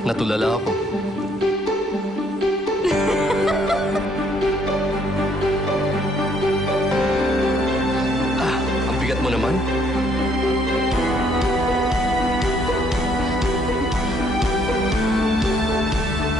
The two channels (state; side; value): normal; both; correlation 0.67